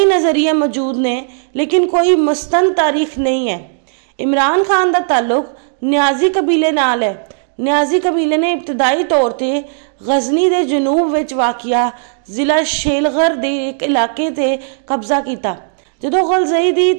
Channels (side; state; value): left; silent; digital silence